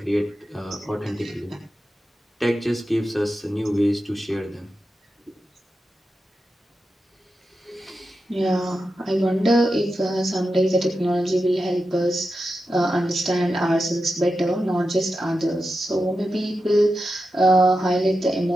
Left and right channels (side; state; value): both; normal; correlation 0.90